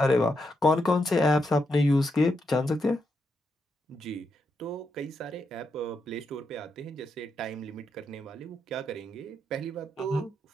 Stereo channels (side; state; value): both; normal; correlation 0.82